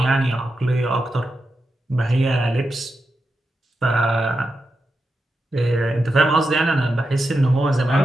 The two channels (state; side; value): normal; both; correlation 0.88